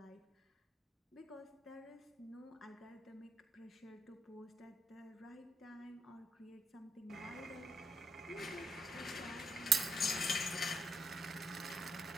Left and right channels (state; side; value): normal; both; correlation 0.77